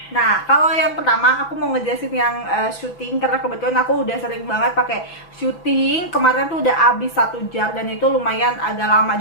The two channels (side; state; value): right; late; 5.9 ms